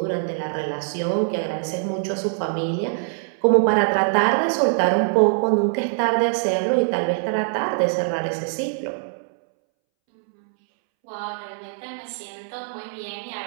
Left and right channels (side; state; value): left; silent; 63 dB below the other